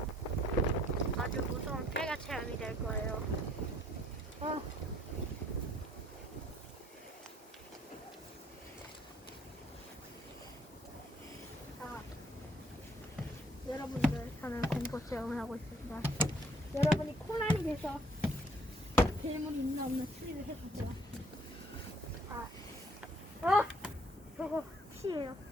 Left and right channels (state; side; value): normal; both; correlation 0.62